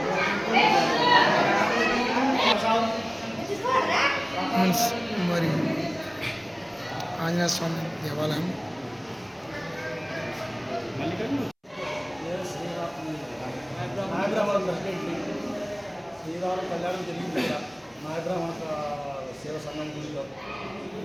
మరి ఆంజనేయ స్వామి దేవాలయం శ్రీరామ కళ్యాణం జరిగింది. నాయబ్రాహ్మణ సేవ సంఘం గుడిలో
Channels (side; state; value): both; identical; correlation 1.00